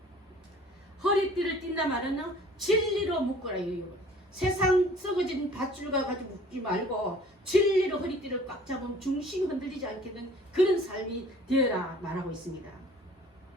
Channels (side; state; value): both; normal; correlation 0.51